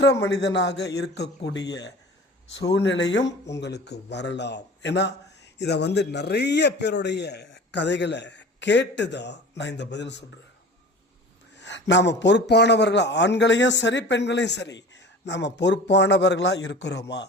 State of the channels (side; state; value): both; normal; correlation 0.39